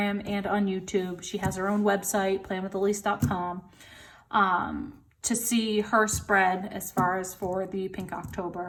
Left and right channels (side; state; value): both; identical; correlation 1.00